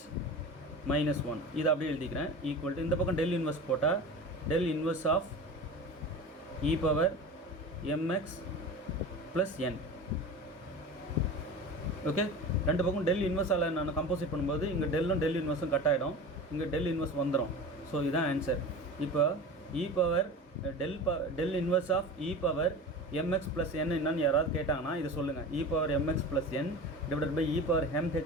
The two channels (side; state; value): both; normal; correlation 0.33